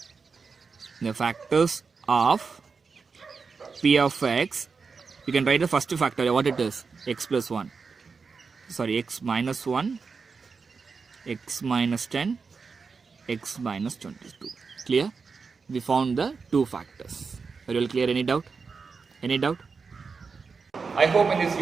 the factors of p of x. You can write the first factor, what it is, x plus 1, sorry, x minus 1, x minus 10, x minus 22. Clear? We found the two factors. Are you all clear? Any doubt? Any doubt? I hope in this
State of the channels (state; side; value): quieter; left; 5.0 dB